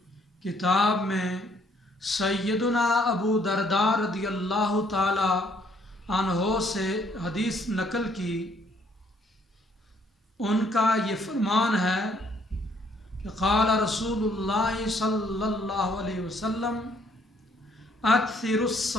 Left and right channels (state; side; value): normal; both; correlation 0.66